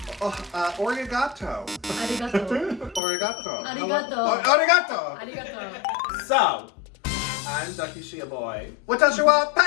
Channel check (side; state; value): right; drops out; at 3.0 s